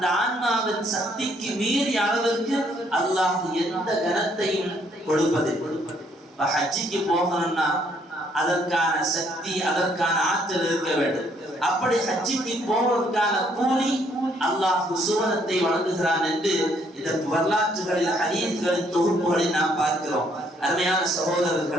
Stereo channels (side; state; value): both; normal; correlation 0.68